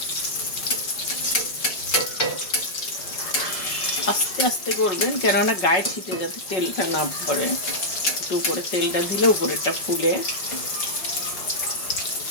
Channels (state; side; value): late; right; 5.4 ms